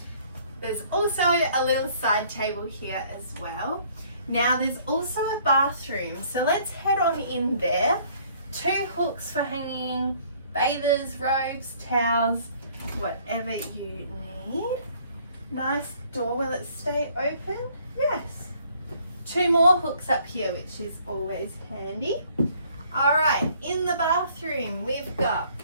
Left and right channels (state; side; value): inverted; both; correlation -0.60